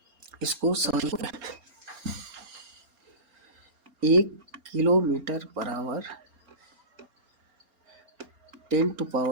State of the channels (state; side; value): late; left; 4.3 ms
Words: इसको सॉल्व कर। 1 किलोमीटर बराबर